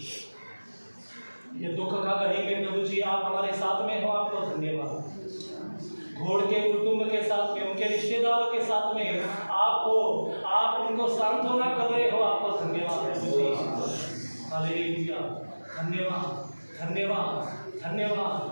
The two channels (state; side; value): inverted; both; correlation -1.00